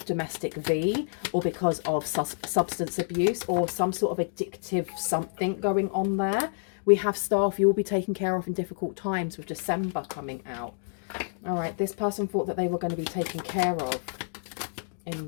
domestic V, or because of substance abuse, or some sort of addictive something going on there. We have staff you will be taken care of in difficult times, with December coming out. All right, this person thought that they were going to be taken care of.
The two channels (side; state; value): right; silent; digital silence